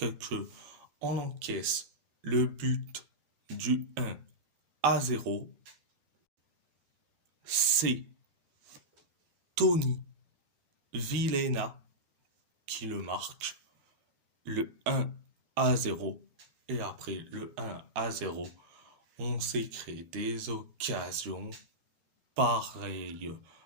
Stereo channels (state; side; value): late; left; 13 ms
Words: ce qu'on encaisse le but du 1-0. C'est Tony Vilhena qui le marque, le 1-0. Et après le 1-0, on s'est créé des occasions pareilles